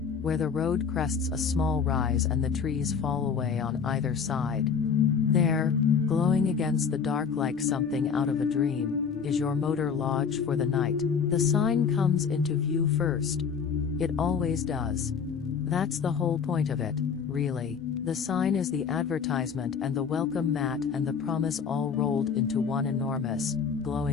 where the road crests a small rise and the trees fall away on either side. There, glowing against the dark like something out of a dream, is your motor lodge for the night. The sign comes into view first. It always does. That's the whole point of it, really. The sign is the advertisement and the welcome mat and the promise all rolled into one enormous,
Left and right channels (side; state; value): right; quieter; 6.4 dB